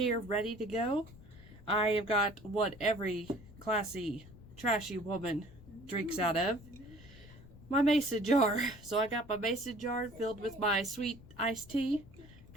ready to go. I have got what every classy, trashy woman drinks out of. My mason jar. So I got my mason jar filled with my sweet iced tea,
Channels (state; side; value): noise; left; rumble, 20 dB below the sound